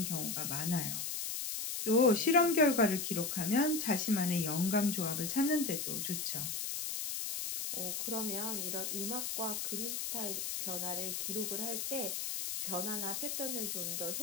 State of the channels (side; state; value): left; noise; hiss, 3 dB below the sound